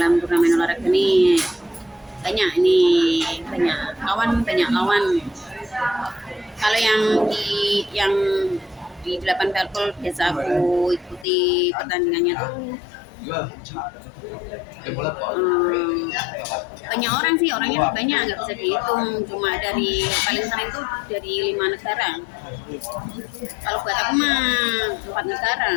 turnamen olahraga nih. Banyak lawan. Kalau yang di 8 Parpol biasa aku ikuti pertandingannya tuh banyak orang sih, orangnya tuh banyak, nggak bisa dihitung, cuma dari paling sering tuh dari 5 negara. Kalau buat aku mah 4 negara,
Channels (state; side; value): drops out; right; at 11.2 s